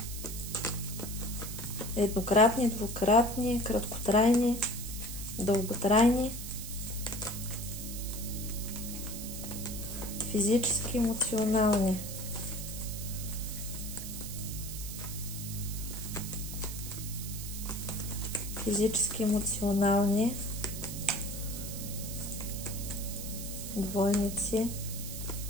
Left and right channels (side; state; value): right; noise; hiss, 9 dB below the sound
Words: Еднократни, двукратни, краткотрайни, дълготрайни, физически, емоционални. Физически, емоционални двойници.